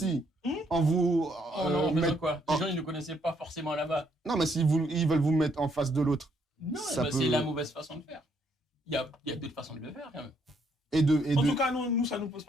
En vous. Quoi? Les gens, ils ne connaissaient pas forcément là-bas. Non, mais s'ils veulent vous mettre en face de l'autre. Non, c'est la mauvaise façon de faire. Il y a d'autres façons de le faire, quand même. En tout cas, nous, ça ne nous pose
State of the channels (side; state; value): both; normal; correlation 0.71